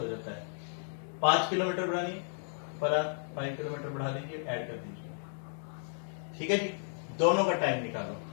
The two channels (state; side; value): silent; right; digital silence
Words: जाता है। 5 किलोमीटर बढ़ानी पर आवर, 5 किलोमीटर बढ़ा दीजिए, ऐड कर दीजिए। ठीक है जी, दोनों का टाइम